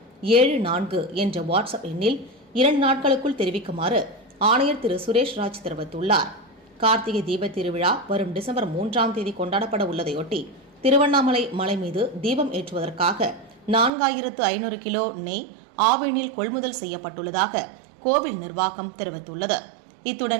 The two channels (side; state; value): left; drops out; at 13.9 s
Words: என்ற வாட்ஸ்அப் எண்ணில் 2 நாட்களுக்குள் தெரிவிக்குமாறு ஆணையர் திரு சுரேஷ் ராஜ் தெரிவித்துள்ளார். கார்த்திகை தீபத் திருவிழா வரும் டிசம்பர் 3ஆம் தேதி கொண்டாடப்பட உள்ளதையொட்டி திருவண்ணாமலை மலை மீது தீபம் ஏற்றுவதற்காக 4500 கிலோ நெய் ஆவினில் கொள்முதல் செய்யப்பட்டுள்ளதாக கோவில் நிர்வாகம் தெரிவித்துள்ளது.